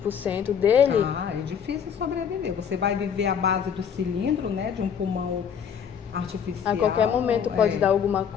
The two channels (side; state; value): right; quieter; 7.6 dB